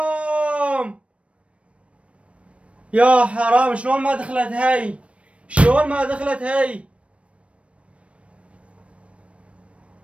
يا حرام، شلون ما دخلت هاي؟ شلون ما دخلت هاي؟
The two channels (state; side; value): late; left; 0.062 ms